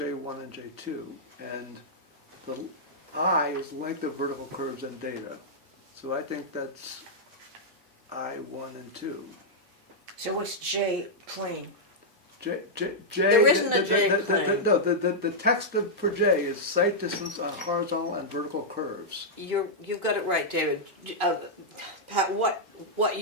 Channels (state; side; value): normal; both; correlation -0.07